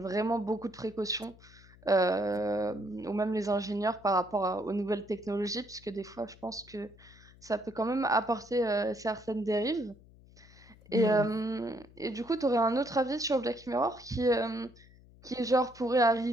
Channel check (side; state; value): left; noise; hum, 24 dB below the sound